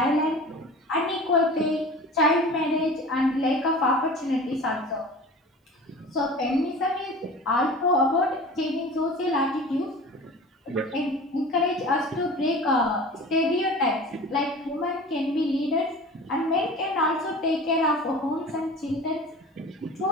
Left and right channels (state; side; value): normal; both; correlation 0.38